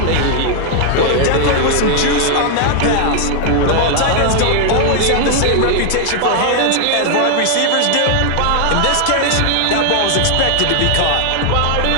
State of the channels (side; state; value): both; different; correlation 0.00